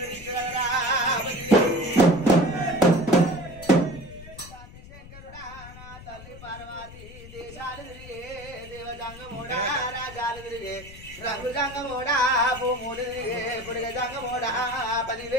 శంకరుడా నా తల్లి పార్వతి దేశాలు తిరిగే దేవజంగమోడా రాజాలు తిరిగే రంగు జంగమోడా భూములు తిరిగే పుడిగ జంగమోడా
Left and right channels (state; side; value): noise; left; rumble, 17 dB below the sound